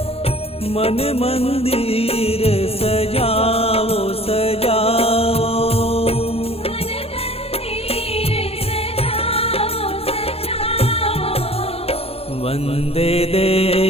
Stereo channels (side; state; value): right; late; 0.29 ms